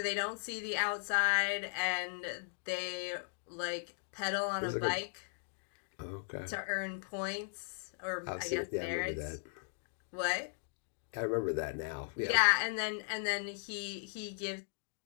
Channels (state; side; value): silent; right; digital silence